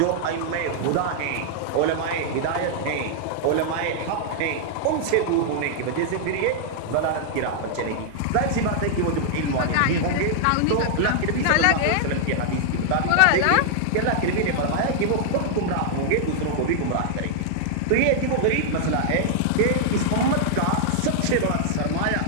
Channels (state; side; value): different; both; correlation -0.01